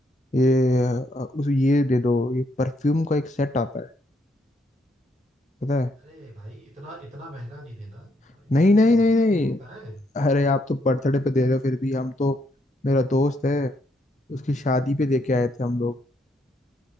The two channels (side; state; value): both; normal; correlation 0.74